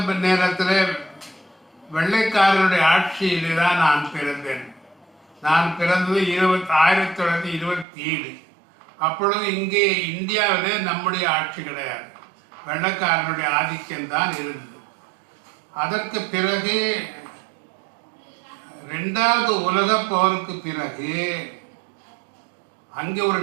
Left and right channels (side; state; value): left; drops out; at 7.9 s